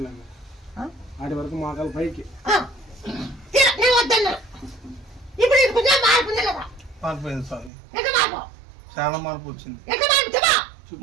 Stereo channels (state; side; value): drops out; left; at 7.7 s